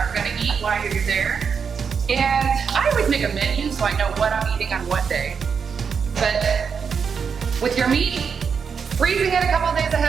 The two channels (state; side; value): quieter; left; 6.3 dB